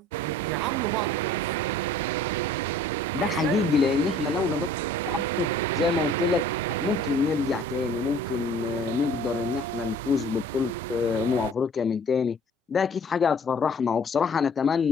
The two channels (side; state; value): both; normal; correlation 0.52